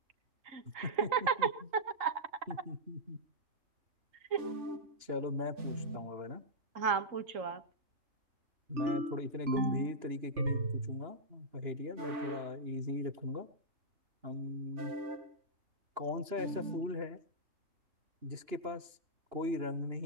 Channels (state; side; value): late; left; 2.9 ms